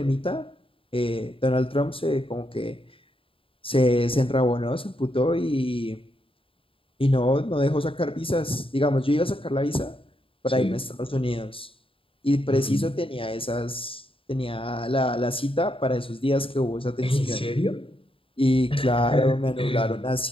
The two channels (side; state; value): right; late; 0.26 ms